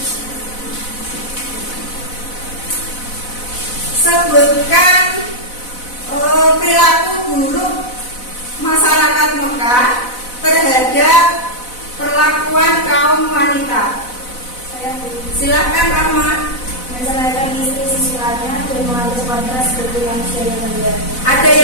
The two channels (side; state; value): right; late; 4.0 ms